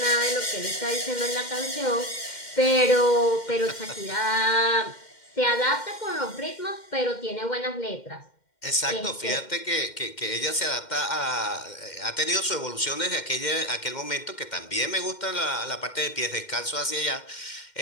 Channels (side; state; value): right; late; 2.1 ms